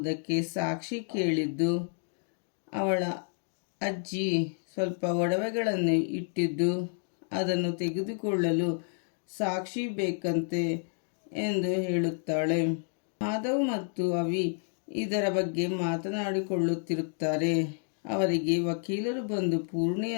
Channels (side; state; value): right; silent; 55 dB below the other